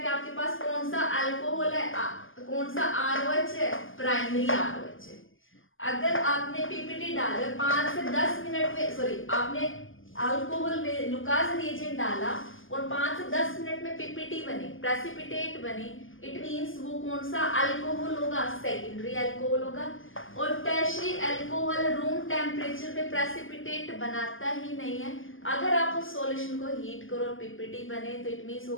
आपके पास कौन सा अल्कोहल है, कौन सा ROH है? प्राइमरी ROH है. अगर आपने PPT डाला 5 से 10 मिनट में, सॉरी आपने अल्कोहल में लुकास रिएजेंट डाला और 5 से 10 मिनट में PPT बने, प्रेसिपिटेट बने, इट मींस वो कौन सा अल्कोहल होगा? सेकेंडरी अल्कोहल होगा. और टर्शियरी अल्कोहल रूम टेम्परेचर पे प्रेसिपिटेट बनाता ही नहीं है. अगर आप उस सॉल्यूशन को हीट करो और PPT बने तो इट मींस वो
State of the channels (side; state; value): right; late; 0.58 ms